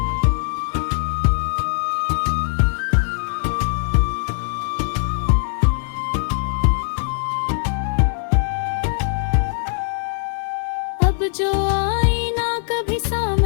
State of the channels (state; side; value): silent; right; 65 dB below the other